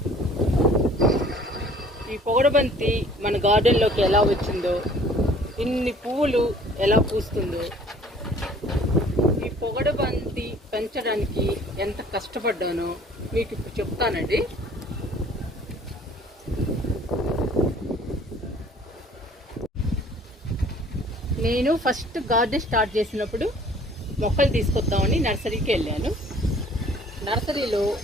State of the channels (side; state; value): both; normal; correlation 0.53